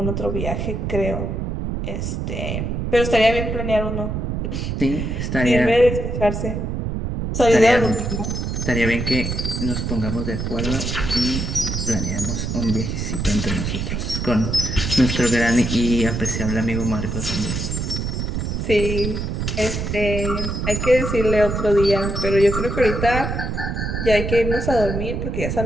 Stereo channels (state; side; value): noise; right; rumble, 2 dB below the sound